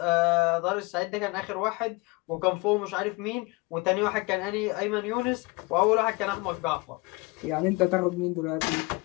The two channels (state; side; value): quieter; right; 25.9 dB